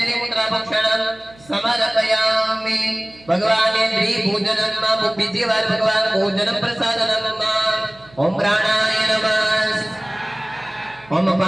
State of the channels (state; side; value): noise; right; hum, 25 dB below the sound